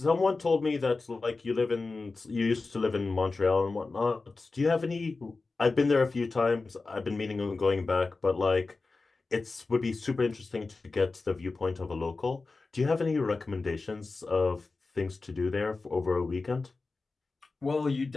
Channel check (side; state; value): right; quieter; 3.8 dB